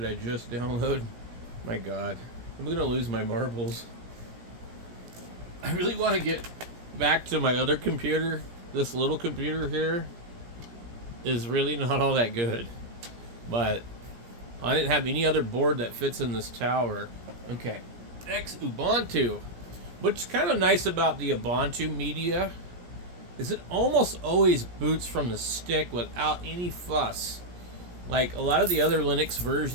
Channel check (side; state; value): left; late; 17 ms